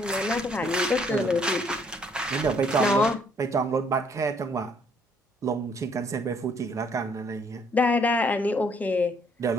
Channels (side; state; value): both; normal; correlation 0.66